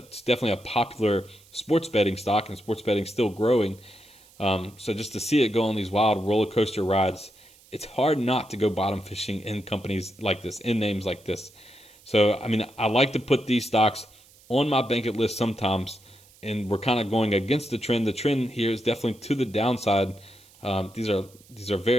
definitely a popular sports betting stock, and sports betting still growing. So just to see it go on these wild roller coaster rides, it's hard not to go bottom fishing in companies like this, in names like this. So, I like to put these stocks on my Bankit list sometimes, and we're kind of going against the trend. The trend here is definitely to the downside. These are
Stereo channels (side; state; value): right; noise; hiss, 27 dB below the sound